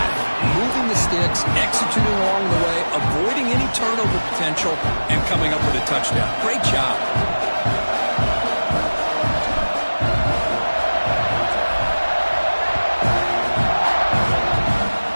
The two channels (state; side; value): inverted; both; correlation -1.00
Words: Moving the sticks, executing along the way, avoiding any turnover potential, and coming up with a touchdown. Great job.